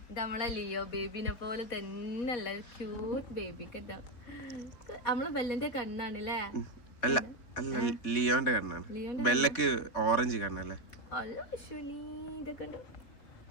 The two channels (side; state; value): right; late; 4.1 ms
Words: ഇത് നമ്മളെ ലിയോ ബേബിനെ പോലെ തന്നെയല്ല, ക്യൂട്ട് ബേബി കേട്ടോ. നമ്മളെ ബെല്ലന്റെ കണ്ണാണല്ലേ? അല്ല ലിയോന്റെ കണ്ണാണ്. ബെല്ലക്ക് ഓറഞ്ച് കണ്ണല്ലേ? അല്ല വിഷുനി ഇതൊക്കെ ഉണ്ട്.